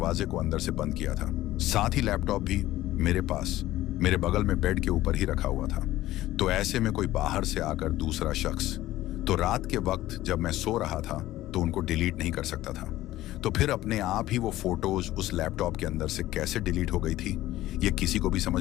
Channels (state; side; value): quieter; right; 15.5 dB